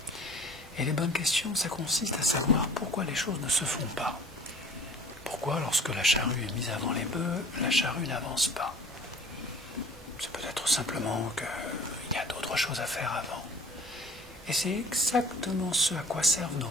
Et les bonnes questions, ça consiste à savoir pourquoi les choses ne se font pas. Pourquoi, lorsque la charrue est mise avant les bœufs, la charrue n'avance pas? C'est peut-être simplement qu'il y a d'autres choses à faire avant. Et c'est exactement ce à quoi servent nos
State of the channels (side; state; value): both; normal; correlation 0.47